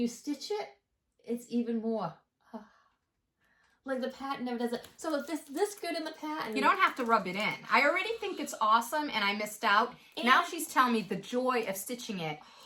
stitch it, it's even more. Like, the pattern never does it. So if this good in the pattern... You don't have to rub it in. I already think it's awesome, and I missed out. And now she's telling me the joy of stitching it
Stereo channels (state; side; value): identical; both; correlation 1.00